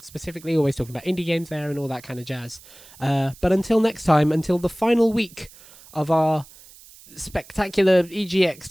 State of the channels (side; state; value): right; noise; hiss, 22 dB below the sound